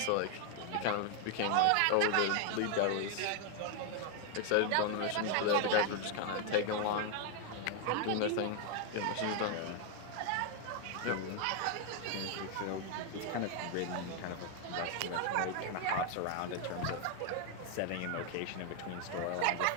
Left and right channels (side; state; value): both; different; correlation 0.00